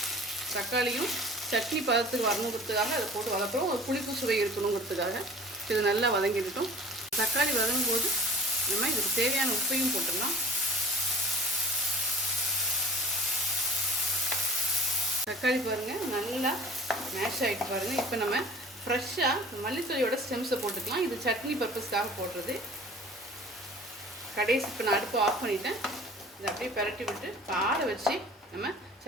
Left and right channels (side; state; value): both; normal; correlation 0.45